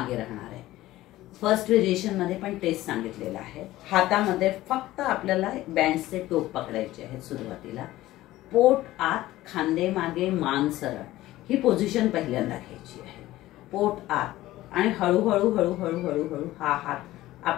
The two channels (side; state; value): right; quieter; 16.1 dB